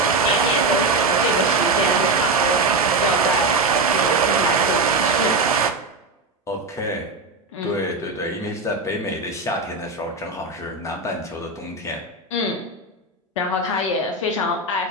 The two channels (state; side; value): quieter; left; 3.2 dB